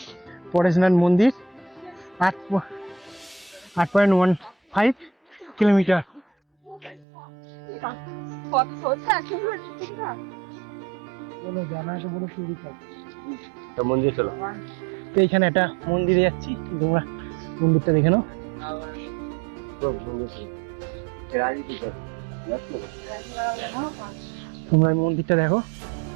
পরেশনাথ মন্দির, 8.15 কিলোমিটার। মন্দির চলো। তো এখানে একটা মন্দিরে যাচ্ছি, তোমরা মন্দিরটা দেখে নাও। তোমরা এই মন্দিরটা দেখো,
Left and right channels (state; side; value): drops out; left; at 7.1 s